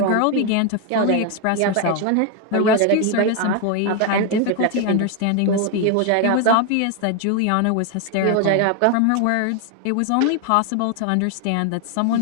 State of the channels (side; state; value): both; different; correlation 0.01